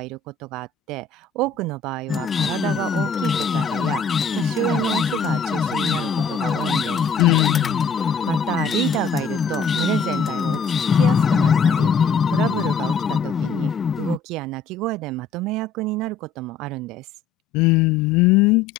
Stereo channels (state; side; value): quieter; right; 4.7 dB